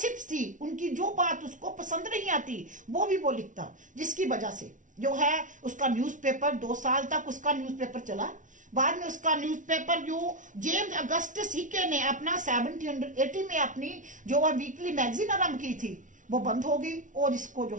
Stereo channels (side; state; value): left; late; 0.37 ms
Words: थी, उनकी जो बात उसको पसंद नहीं आती वो भी वो लिखता, जिसकी वजह से जो है उसका न्यूज़पेपर 2 साल तक उसका न्यूज़पेपर चला। बाद में उसका न्यूज़पेपर जो जेम्स अगस्टस हिक्के ने अपना 1780 में अपनी जो वह वीकली मैगजीन आरंभ की थी वो बंद हो गई और इसको जो